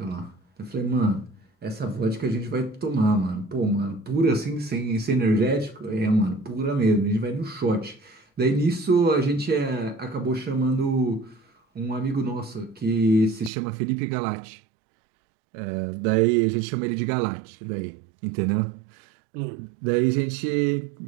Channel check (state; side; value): drops out; left; at 13.5 s